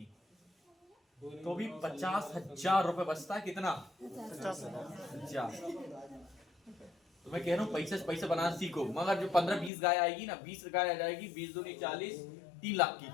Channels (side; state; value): right; drops out; at 9.7 s